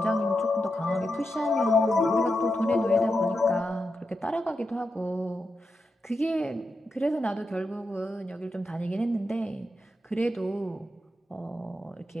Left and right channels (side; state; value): both; normal; correlation 0.87